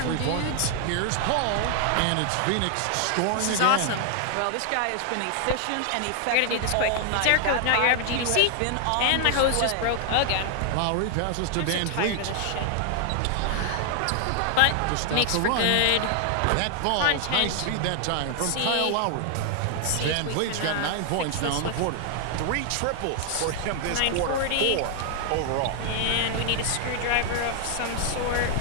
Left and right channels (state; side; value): different; both; correlation 0.00